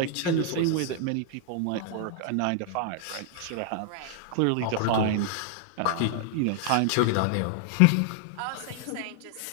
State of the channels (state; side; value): different; both; correlation 0.00